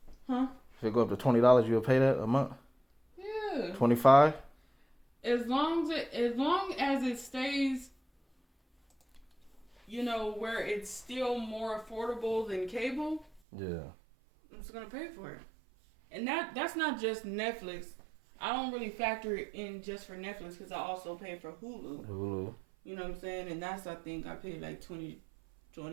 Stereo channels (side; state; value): left; drops out; at 13.4 s